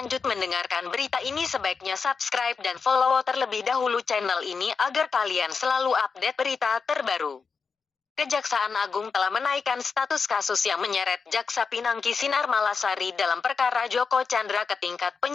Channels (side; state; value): right; quieter; 5.3 dB